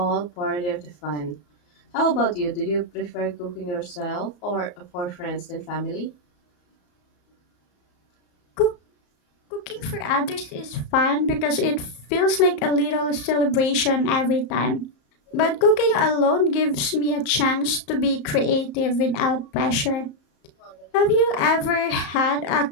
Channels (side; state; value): right; late; 34 ms